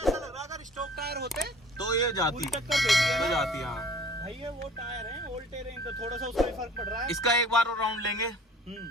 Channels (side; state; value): both; normal; correlation 0.48